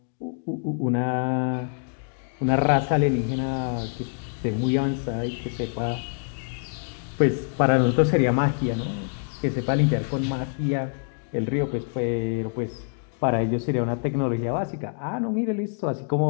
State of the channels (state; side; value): silent; right; 59 dB below the other